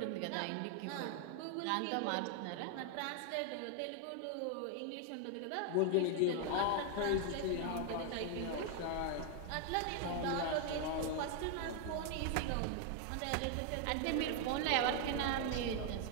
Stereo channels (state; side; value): different; both; correlation 0.00